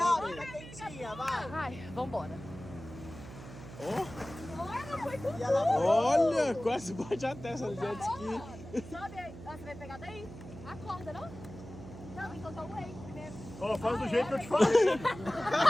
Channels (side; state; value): right; noise; hum, 14 dB below the sound